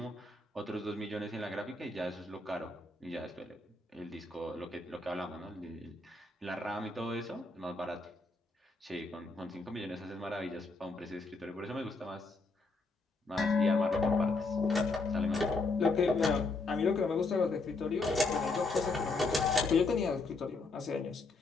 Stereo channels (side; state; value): right; quieter; 3.5 dB